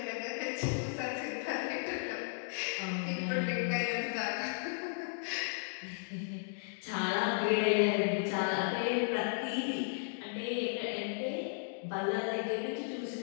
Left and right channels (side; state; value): right; silent; digital silence